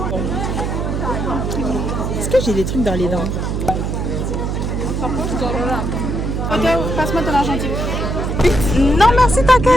Est-ce que j'ai des trucs dans les dents? Passe-moi ton argentique. Non, merci,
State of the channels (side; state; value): right; noise; hum, 2 dB below the sound